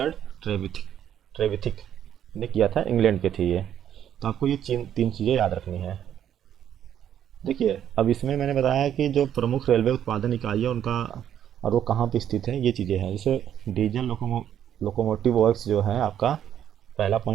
ट्रेविथिक ने किया था, इंग्लैंड के थे ये। तो आपको ये तीन चीज़ें याद रखनी है। देखिए अब इसमें मैंने बताया कि जो प्रमुख रेलवे उत्पादन इकाई है उनका और वो कहाँ पे स्थित है, ये चीज़ें हैं। जैसे डीजल लोकोमोटिव वर्क्स जो है आपका, पहला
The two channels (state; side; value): quieter; left; 10.0 dB